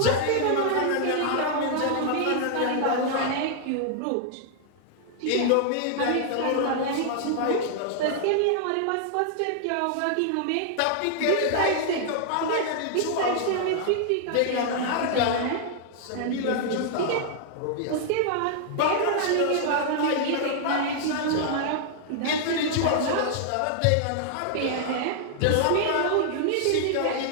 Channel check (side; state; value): both; different; correlation -0.01